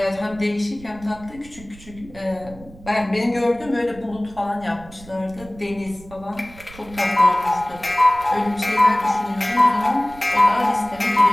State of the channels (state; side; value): noise; right; rumble, 20 dB below the sound